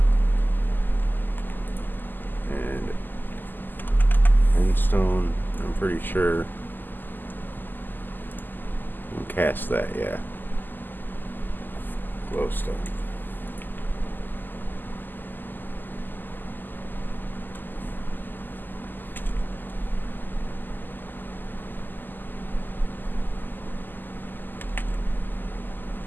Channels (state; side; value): late; right; 0.089 ms